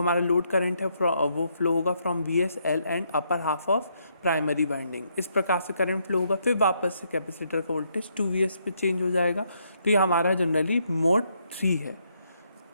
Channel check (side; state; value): both; inverted; correlation -0.75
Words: लोड करंट है वो फ्लो होगा from VSL and upper half of primary winding. इस प्रकार से करंट फ्लो होगा, फिर वापस से कैपेसिटर का वोल्टेज 2Vs पे चेंज हो जाएगा। तो ये हमारा जनरली मोड 3 है।